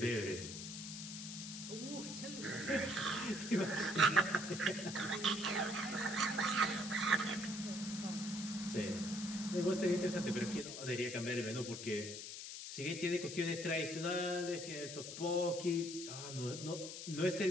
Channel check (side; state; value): left; noise; hiss, 8 dB below the sound